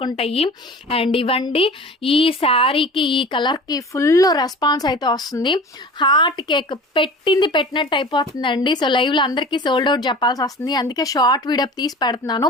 ఉంటాయి. అండ్ ఇవ్వండి, ఈ శారీకి ఈ కలర్కి ఫుల్ రెస్పాన్స్ అయితే వస్తుంది. హార్ట్ కేక్ పెట్టింది పెట్టినట్టు అయిపోతుందండి. సో లైవ్లో అందరికీ సోల్డ్ అవుట్ చెప్పాల్సి వస్తుంది, అందుకే షార్ట్ వీడియో తీసి పెడుతున్నాను.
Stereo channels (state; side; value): normal; both; correlation 0.39